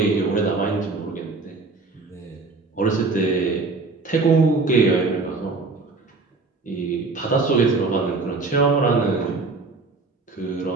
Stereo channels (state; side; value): quieter; left; 3.8 dB